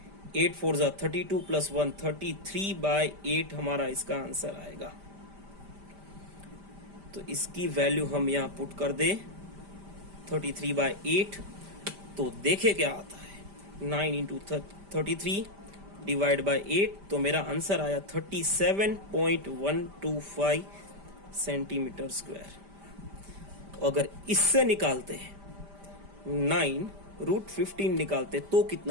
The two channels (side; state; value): left; late; 5.0 ms